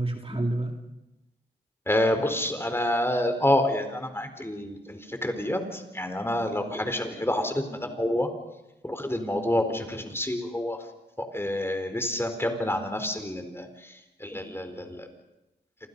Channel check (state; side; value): normal; both; correlation 0.74